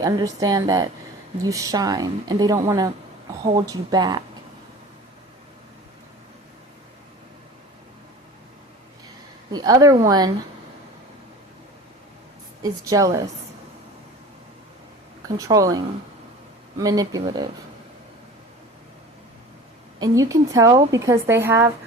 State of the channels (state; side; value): normal; both; correlation 0.39